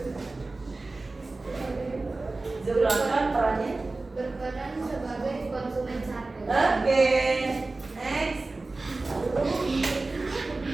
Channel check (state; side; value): quieter; left; 3.3 dB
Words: Zooplankton perannya. berperan sebagai konsumen satu. Oke, next.